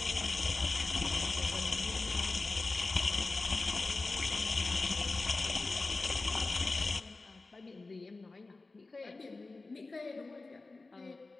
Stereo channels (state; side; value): quieter; right; 3.5 dB